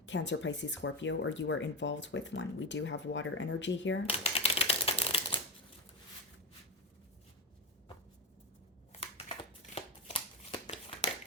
Cancer, Pisces, Scorpio, or you are involved with one. We do have water energy here.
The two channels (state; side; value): normal; both; correlation 0.16